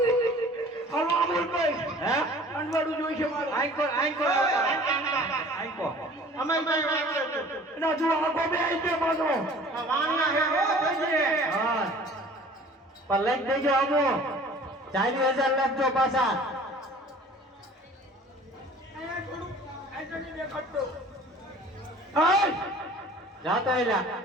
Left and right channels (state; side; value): normal; both; correlation 0.48